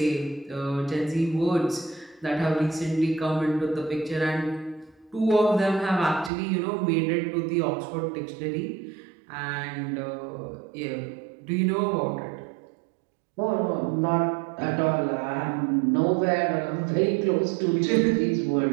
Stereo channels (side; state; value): left; drops out; at 6.3 s